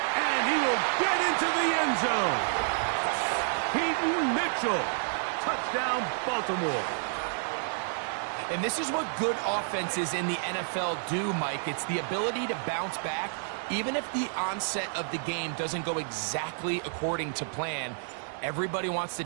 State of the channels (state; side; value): silent; left; 58 dB below the other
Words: And he will get into the end zone. Peyton Mitchell. Touchdown, Baltimore. And this is what good offenses in the NFL do, Mike. It's the ability to bounce back, even if the onset of the game doesn't go exactly according to plan. Everybody wants to